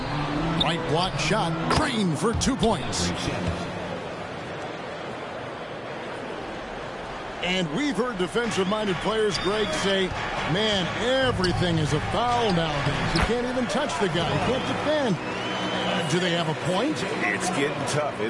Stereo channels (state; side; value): identical; both; correlation 1.00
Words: Right block shot, Green for 2 points. And we've heard defensive-minded players, Greg, say, man, everything is a foul nowadays. You can't even touch the guy. You can't defend. Do they have a point? It's getting tough,